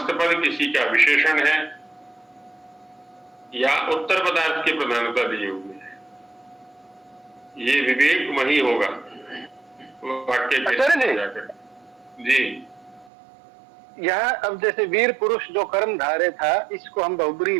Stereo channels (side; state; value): left; drops out; at 13.1 s